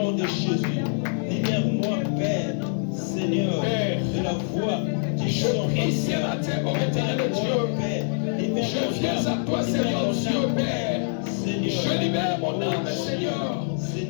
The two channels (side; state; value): right; silent; 55 dB below the other